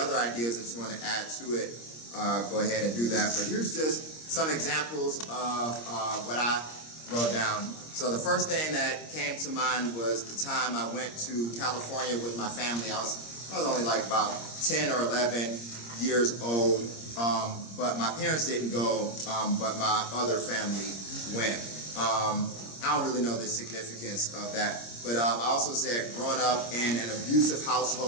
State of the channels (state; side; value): late; right; 26 ms